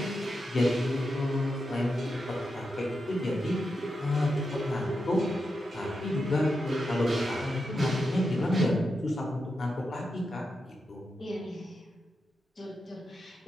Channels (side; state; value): both; normal; correlation 0.87